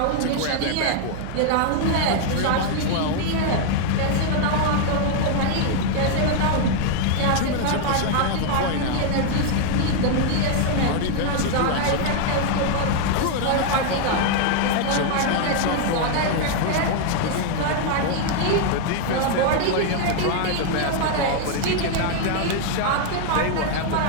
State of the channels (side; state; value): both; different; correlation 0.00